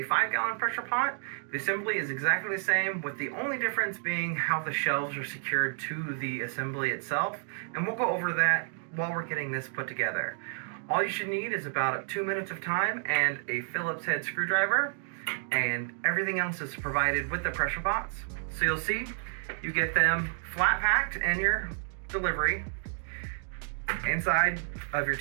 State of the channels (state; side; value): silent; left; digital silence